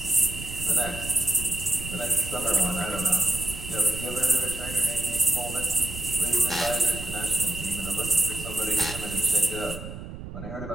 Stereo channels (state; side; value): noise; right; rumble, 10 dB below the sound